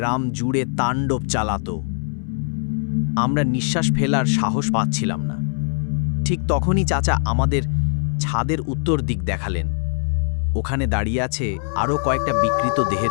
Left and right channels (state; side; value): silent; right; 63 dB below the other